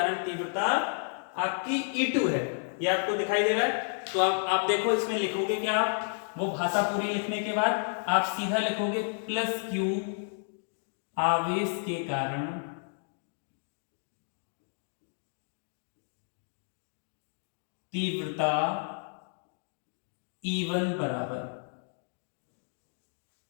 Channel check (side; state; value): right; silent; digital silence